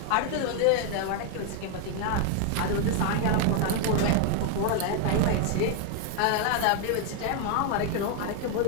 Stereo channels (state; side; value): different; both; correlation 0.00